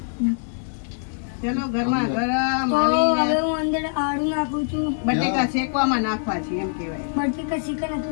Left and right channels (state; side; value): silent; right; digital silence